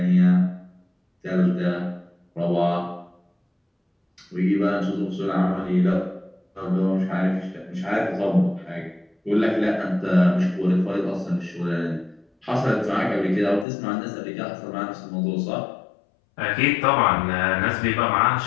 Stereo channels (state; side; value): drops out; right; at 13.7 s